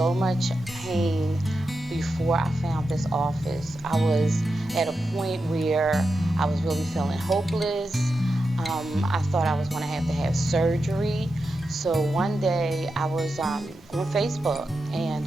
much pain before I found this office. I was at a point where I was really feeling hopeless. I thought I was going to have surgery. So one day I was on Facebook,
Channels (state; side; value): normal; both; correlation 0.89